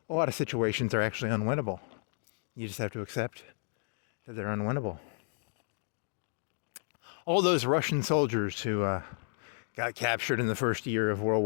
a lot of situations are actually unwinnable. You just have to accept that they're unwinnable. All those Russian soldiers who got captured in the first year of World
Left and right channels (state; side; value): silent; right; digital silence